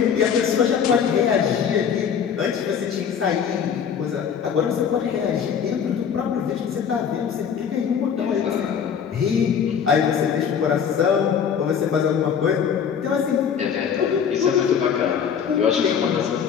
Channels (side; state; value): right; quieter; 7.5 dB